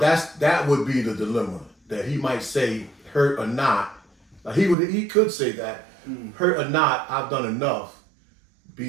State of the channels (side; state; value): left; drops out; at 4.8 s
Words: would be the dilemma that he might say, hurt or not. He could say that, hurt or not, I've done enough